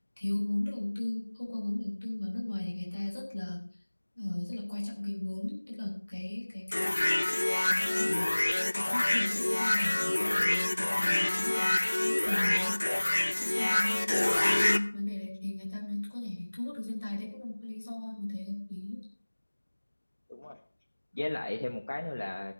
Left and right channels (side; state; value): both; inverted; correlation -1.00